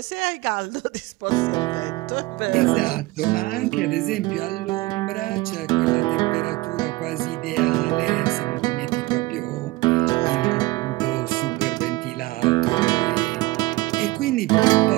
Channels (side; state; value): left; quieter; 20.9 dB